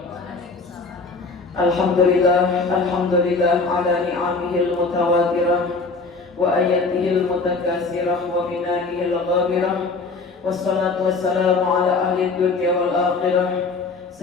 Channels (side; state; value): right; quieter; 4.0 dB